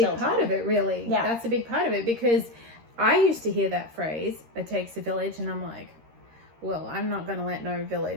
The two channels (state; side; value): late; left; 13 ms